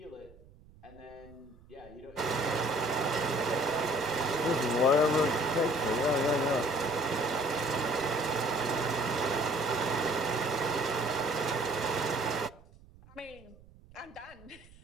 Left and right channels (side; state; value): right; noise; rumble, 24 dB below the sound